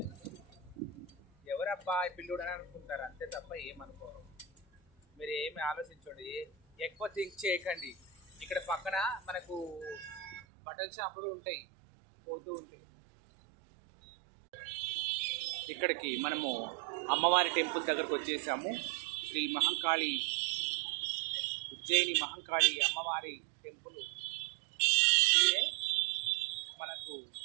ఎవరబ్బా పిల్లుడు అని అనుకుంటారు అంతే తప్ప ఏమనుకోరు. మీరు ఏమి ఆలోచించండి, ఎక్కువ థింక్ చేయకండి. ఇక్కడ పక్కన మనకు బట్టల షాపులు ఉంటాయి, పోతూ ఉంటాయి. ఇక్కడికి మనము అమ్మవారి టెంపుల్ దగ్గరకు వచ్చేసాము. శ్రీ మహంకాళి, ఉజ్జయిని మహంకాళి అమ్మవారి టెంపుల్ ఇదే. మనకు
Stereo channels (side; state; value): left; drops out; at 10.5 s